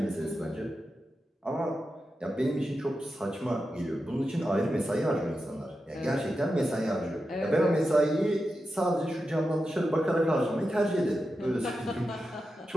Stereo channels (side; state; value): both; normal; correlation 0.90